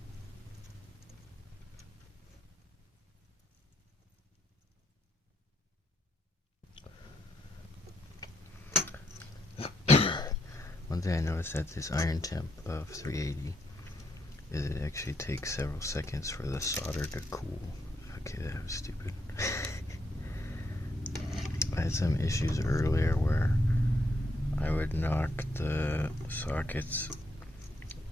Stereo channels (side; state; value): both; normal; correlation 0.78